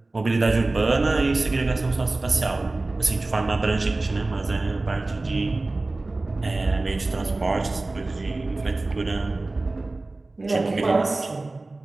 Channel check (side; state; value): left; quieter; 3.1 dB